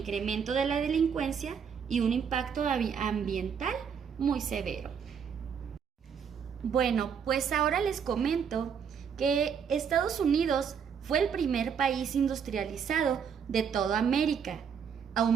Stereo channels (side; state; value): left; quieter; 7.1 dB